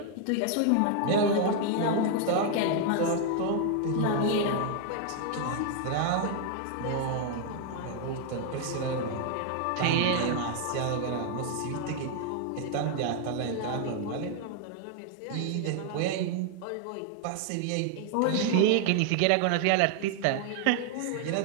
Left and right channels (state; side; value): different; both; correlation 0.00